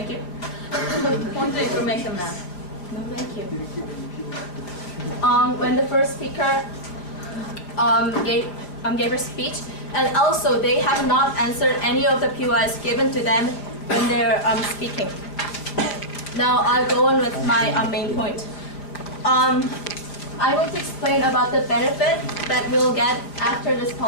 you. Point of information, ma'am. No, thank you. When the first speaker gave her speech, and also they have not answered any of the POIs given to them when they're speaking. Now I'll go on with my main point. I'm going to explain about the benefit that we'll get after this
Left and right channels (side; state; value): right; late; 5.1 ms